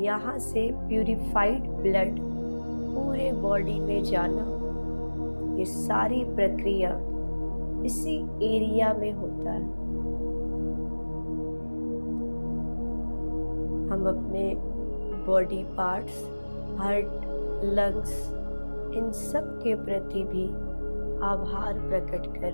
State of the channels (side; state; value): both; inverted; correlation -1.00